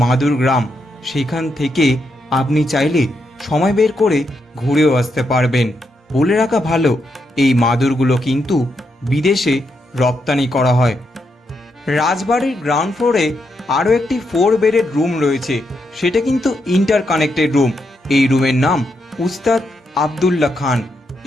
মাদুর গ্রাম, সেখান থেকে আপনি চাইলে সময় বের করে ঘুরেও আসতে পারবেন। বলে রাখা ভালো, এই মাদুরগুলো কিন্তু বিদেশে রপ্তানি করা হয়। রাজবাড়ির গ্রাউন্ড ফ্লোরে আরও একটি 4 বেডের রুম রয়েছে, সেটা কিন্তু ইন্টার কানেক্টেড রুম। এই রুমের নাম উস্তাদ আবদুল্লাহ খান।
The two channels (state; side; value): normal; both; correlation 0.81